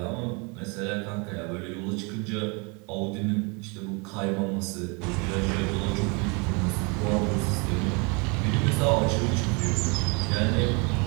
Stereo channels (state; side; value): quieter; left; 31.4 dB